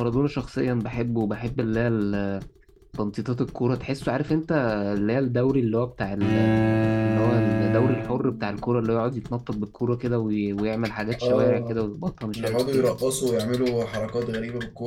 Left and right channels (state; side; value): identical; both; correlation 1.00